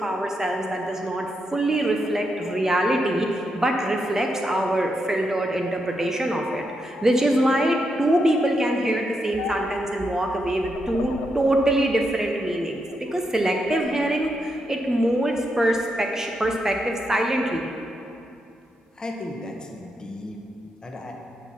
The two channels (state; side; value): normal; both; correlation 0.83